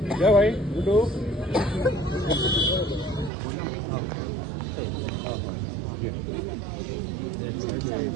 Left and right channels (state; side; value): drops out; left; at 3.3 s